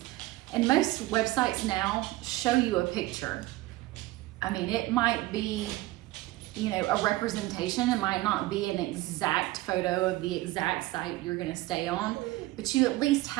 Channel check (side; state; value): left; quieter; 18.3 dB